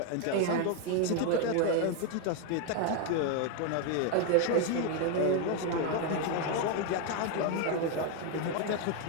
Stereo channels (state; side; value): different; both; correlation 0.01